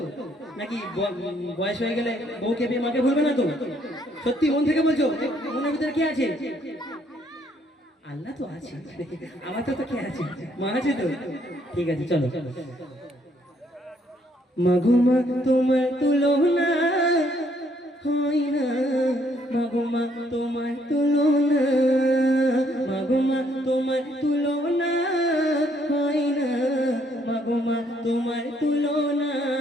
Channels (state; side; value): normal; both; correlation 0.69